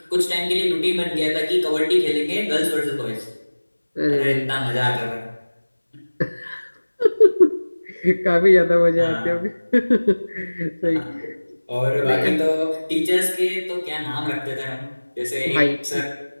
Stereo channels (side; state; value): both; inverted; correlation -1.00